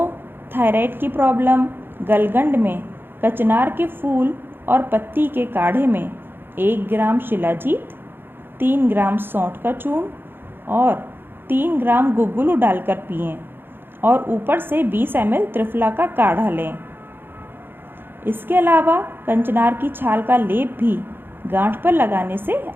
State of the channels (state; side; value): late; left; 0.10 ms